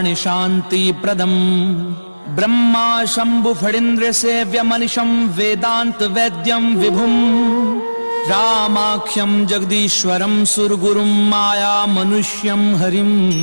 शांति प्रदम ब्रह्मा शंभु फणीन्द्र सेव्यमनिशं वेदांत वैद्यं विभुं रामाख्यं जगदीश्वरं सुरगुरुं माया मनुष्यं हरिं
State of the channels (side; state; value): both; inverted; correlation -1.00